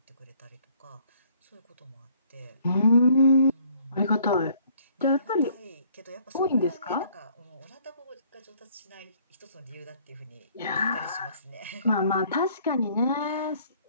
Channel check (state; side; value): inverted; both; correlation -0.61